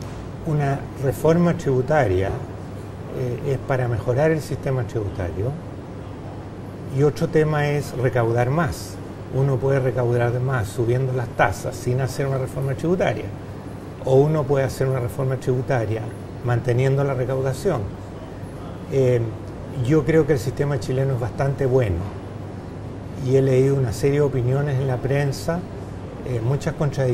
Una reforma tributaria es para mejorar el sistema tributario y otro tema es recaudar más. Uno puede recaudar más subiendo las tasas sin hacer una reforma tributaria, o uno puede hacer una reforma tributaria manteniendo la recaudación. Yo creo que el sistema chileno es bastante bueno y he leído una serie de opiniones en la prensa, muchas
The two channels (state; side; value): identical; both; correlation 1.00